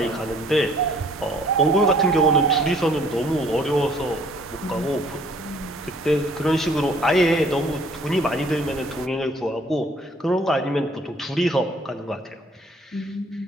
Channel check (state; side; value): normal; both; correlation 0.58